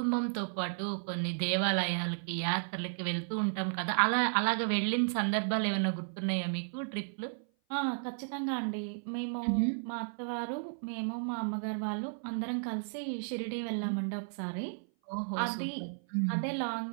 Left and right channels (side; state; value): left; silent; 55 dB below the other